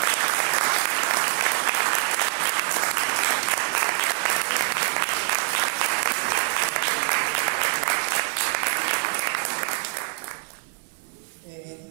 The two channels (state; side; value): quieter; left; 39.3 dB